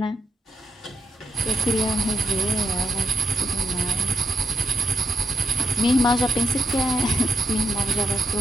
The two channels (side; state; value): both; normal; correlation 0.84